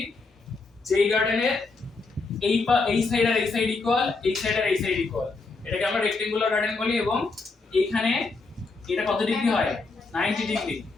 যেই গার্ডেনের এই সাইড আর এই সাইড ইকুয়াল, এই সাইড আর এই সাইড ইকুয়াল, এটাকে আমরা রেক্টেঙ্গুলার গার্ডেন বলি। এবং এখানে এটা কত ডিগ্রি হয়? 90 ডিগ্রি,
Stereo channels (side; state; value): right; quieter; 3.9 dB